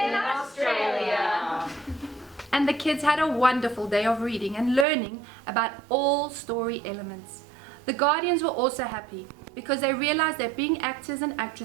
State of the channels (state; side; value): drops out; left; at 4.9 s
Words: Australia. And the kids had a wonderful day of reading and learning about all story elements. The guardians were also happy because they realized that being actors and